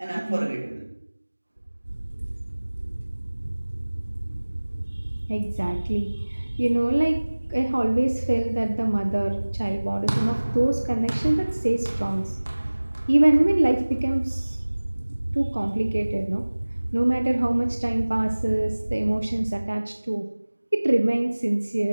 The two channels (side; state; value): both; inverted; correlation -1.00